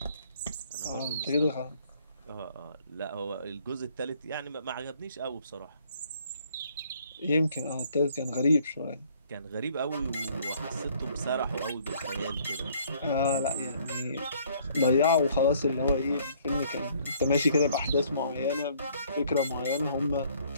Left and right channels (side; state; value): both; inverted; correlation -0.61